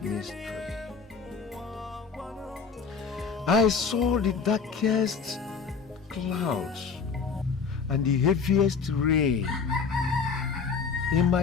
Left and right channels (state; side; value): quieter; right; 5.5 dB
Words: I saw the darkest clouds and the heaviest rain in